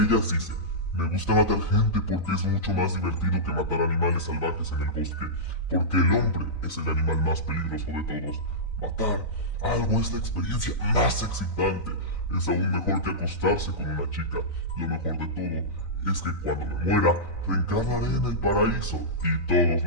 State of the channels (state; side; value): late; right; 3.9 ms